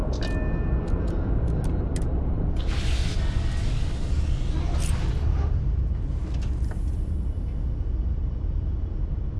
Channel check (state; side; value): identical; both; correlation 1.00